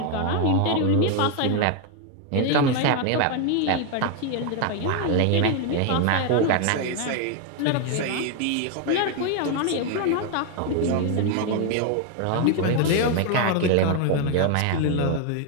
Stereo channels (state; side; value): different; both; correlation 0.01